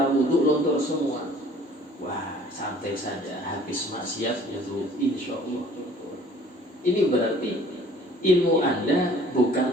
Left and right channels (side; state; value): both; normal; correlation 0.52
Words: wudu luntur semua. Wah, santai saja, habis maksiat itu insya Allah luntur. Ini berarti ilmu Anda